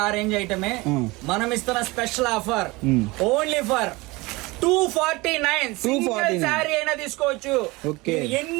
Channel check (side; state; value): left; quieter; 23.0 dB